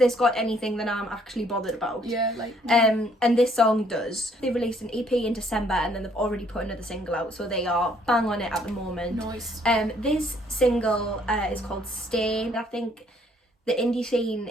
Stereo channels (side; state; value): both; normal; correlation 0.65